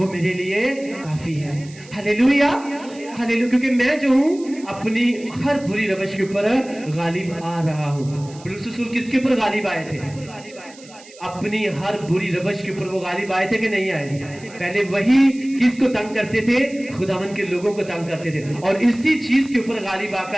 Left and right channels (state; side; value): noise; right; hiss, 22 dB below the sound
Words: میرے لیے کافی ہے۔ ہلیلویا، ہلیلویا۔ کیونکہ میں جو ہوں اپنی ہر بری روش کے اوپر غالب آ رہا ہوں۔ پولس رسول کس کے اوپر غالب آئے تھے؟ اپنی ہر بری روش کے اوپر وہ غالب آئے تھے کہ نہیں آئے تھے؟ پہلے وہی کس کو تنگ کرتے تھے؟ خداوند کے لوگوں کو تنگ کرتے تھے، اور اسی چیز کے اوپر غالب آ